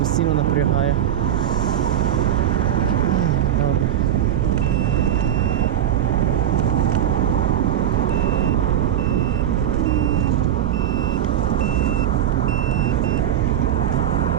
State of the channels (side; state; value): left; quieter; 10.8 dB